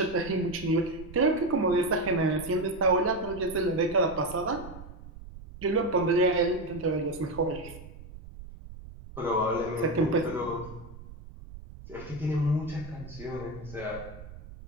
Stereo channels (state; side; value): noise; right; rumble, 15 dB below the sound